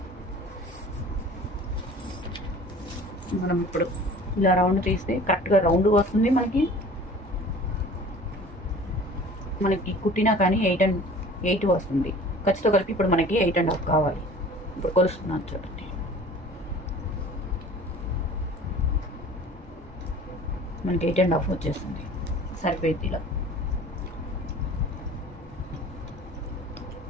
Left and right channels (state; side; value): normal; both; correlation 0.44